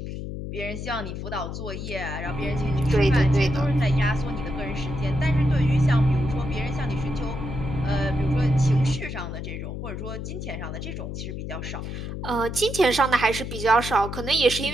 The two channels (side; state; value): left; noise; hum, 6 dB below the sound